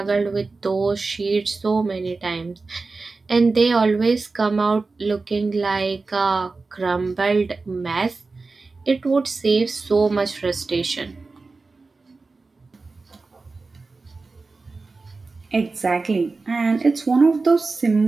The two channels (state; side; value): quieter; left; 3.9 dB